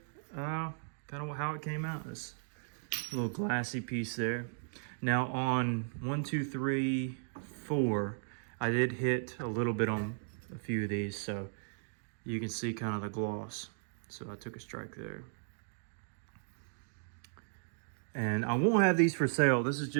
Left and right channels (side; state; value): left; silent; digital silence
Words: kind of how it came out. This little glassy piece there. Now on 1, 2, 3, 4, I did hit a little bit on a few of these, so you can see kind of the gloss. So I took a strike there. And I won't have these for sale. This is